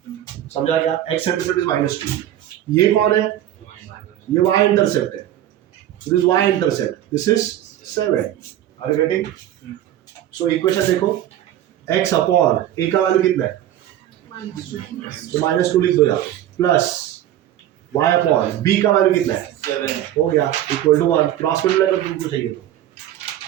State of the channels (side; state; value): left; quieter; 12.4 dB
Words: समझा क्या? x intercept is -2। ये कौन है? ये y इंटरसेप्ट है, this y intercept, this is 7। Are you getting? So equation देखो, x अपॉन a का वैल्यू कितना है? तो -2 लिख दो यहाँ, प्लस y अपॉन b का वैल्यू कितना है? 7 हो गया, इक्वल टू 1। क्रॉस मल्टीप्लाई कर तुमको चाहिए तो